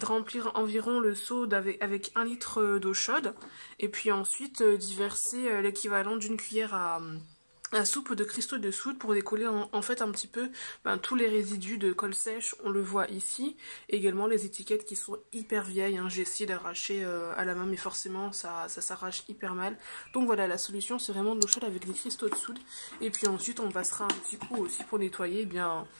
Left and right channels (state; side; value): inverted; both; correlation -1.00